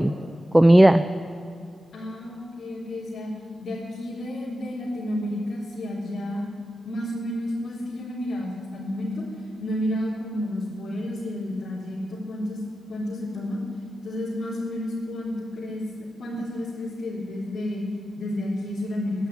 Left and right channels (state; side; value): normal; both; correlation 0.93